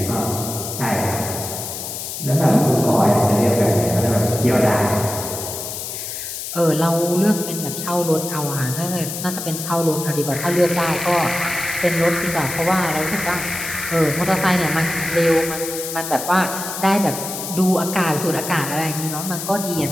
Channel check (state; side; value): noise; left; hiss, 7 dB below the sound